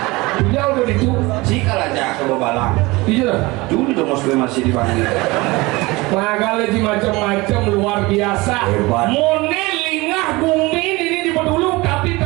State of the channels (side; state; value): left; quieter; 22.5 dB